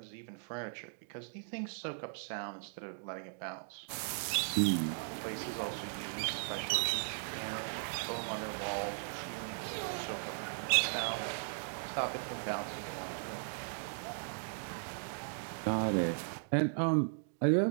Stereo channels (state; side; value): silent; left; digital silence